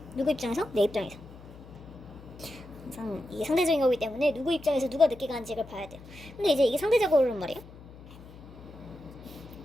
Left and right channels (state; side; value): noise; left; hum, 18 dB below the sound